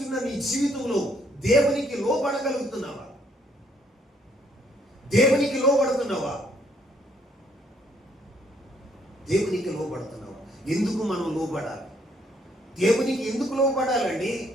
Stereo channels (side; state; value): both; normal; correlation 0.68